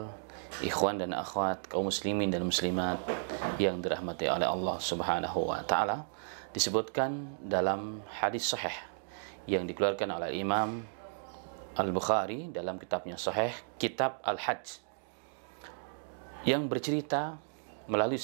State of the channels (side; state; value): left; silent; digital silence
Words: ikhwan dan akhwat, kaum muslimin dan muslimat yang dirahmati oleh Allah Subhanahu wa taala, disebutkan dalam hadis sahih yang dikeluarkan oleh Imam Al-Bukhari dalam kitabnya Sahih, Kitab Al-Hajj, yang bercerita melalui